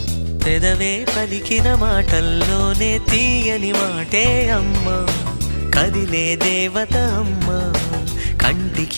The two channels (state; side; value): inverted; both; correlation -1.00